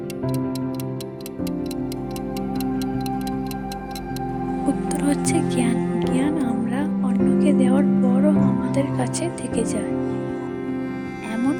উত্তর হচ্ছে জ্ঞান। জ্ঞান আমরা অন্যকে দেওয়ার পরও আমাদের কাছে থেকে যায়। এমন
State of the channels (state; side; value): identical; both; correlation 1.00